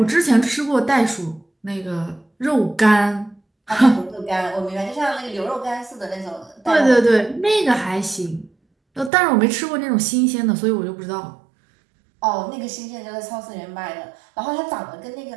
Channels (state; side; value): drops out; left; at 9.1 s